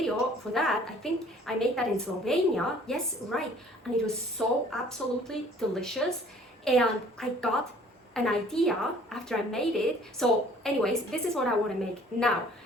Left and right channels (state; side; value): normal; both; correlation 0.54